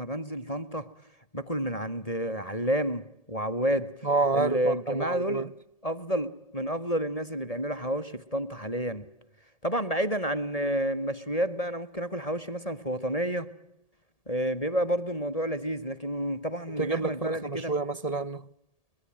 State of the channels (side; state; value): right; late; 1.7 ms